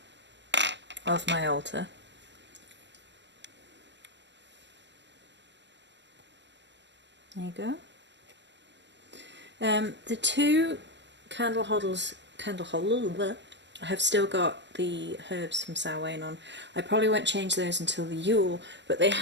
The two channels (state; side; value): late; left; 0.52 ms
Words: of my altar. There you go. The two candle holders have still got the herbs from Samhain on. I probably won't change those until the Yule, but they